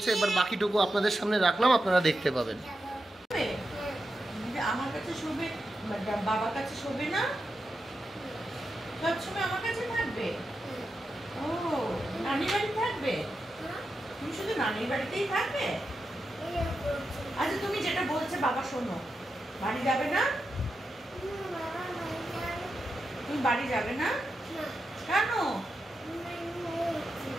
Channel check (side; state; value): both; normal; correlation 0.89